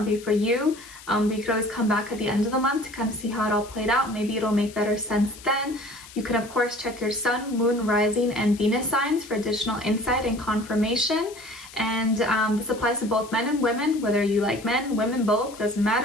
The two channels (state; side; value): noise; left; hiss, 18 dB below the sound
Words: be for you. But you could always come back at the end of the month to kind of see how it all played out. Maybe it'll make better sense then. You can of course check your sun, moon, rising, and Venus signs for additional insight and confirmation. And this applies to both men and women, whether you like men, women, both, doesn't